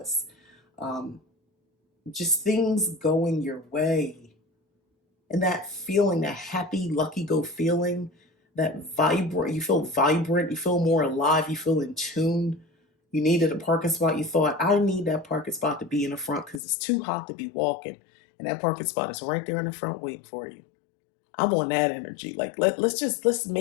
Just things going your way. And that feeling, that happy, lucky go feeling, that vibrant, you feel vibrant, you feel more alive, you feel in tune. You needed a parking spot. You thought, I need that parking spot to be in the front because it's too hot to be walking. And that parking spot is right there in the front waiting for you. I'm on that energy. Like let's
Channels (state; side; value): drops out; right; at 16.6 s